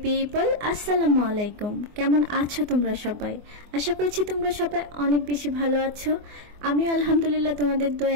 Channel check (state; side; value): late; left; 24 ms